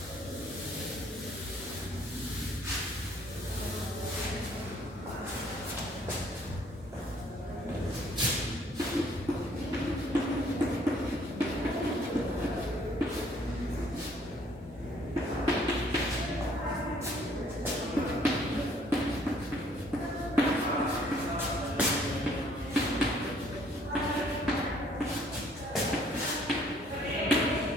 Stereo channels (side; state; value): both; normal; correlation 0.61